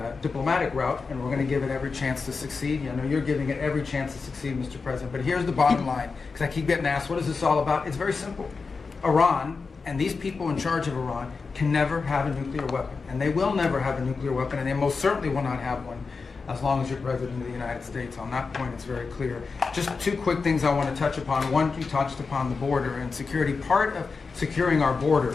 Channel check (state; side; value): quieter; right; 4.6 dB